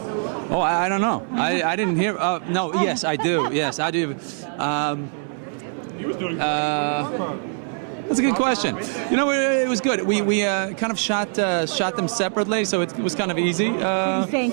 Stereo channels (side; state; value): left; silent; 59 dB below the other